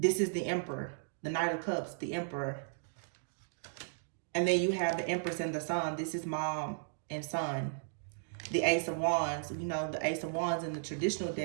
is the Emperor, the Knight of Cups, the Emperor. And then you have the Empress and the Sun. This is mom and son. The Ace of Wands, the Ace of Wands in the traditional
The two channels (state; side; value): silent; left; digital silence